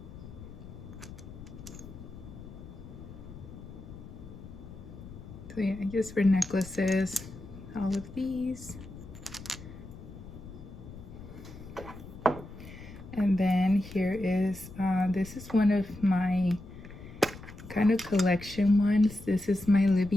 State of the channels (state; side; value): noise; left; rumble, 14 dB below the sound